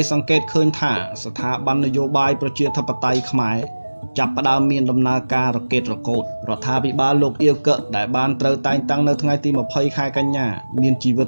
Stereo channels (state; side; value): inverted; both; correlation -1.00